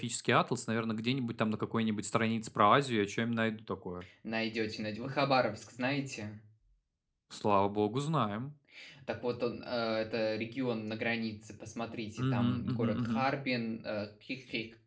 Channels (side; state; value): both; identical; correlation 1.00